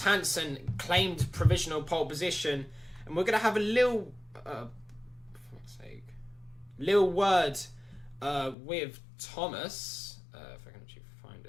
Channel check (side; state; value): right; drops out; at 8.6 s